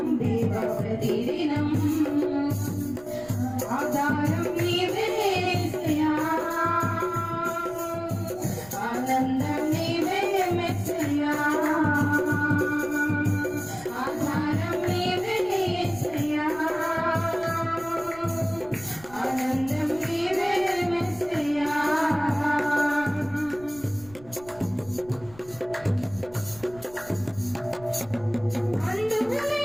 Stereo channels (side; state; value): right; noise; rumble, 22 dB below the sound